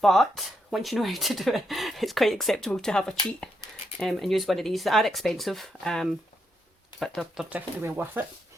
but once you know how to do it, it's quite acceptable to have a cheat and use one of these. They are expensive, but they're definitely well worth it.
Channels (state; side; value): normal; both; correlation 0.80